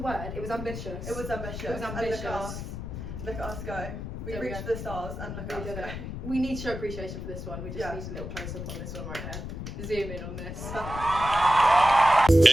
word? It was ambitious. It was ambitious. It was ambitious. And look at us go. We There we reached go. the stars and look at us go. We need to show appreciation for this one. We just need a little close up on this one right here. Zoom in on this.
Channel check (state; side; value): noise; left; rumble, 7 dB below the sound